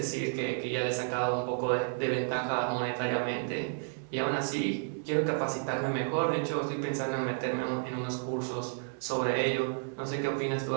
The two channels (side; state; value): left; silent; digital silence